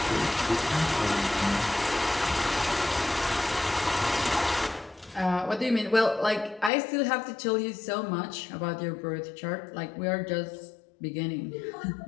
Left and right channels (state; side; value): drops out; right; at 6.7 s